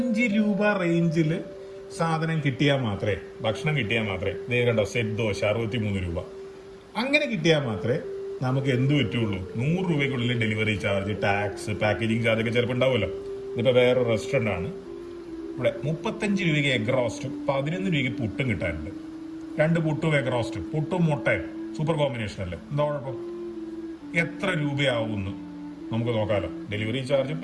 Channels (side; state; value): both; identical; correlation 1.00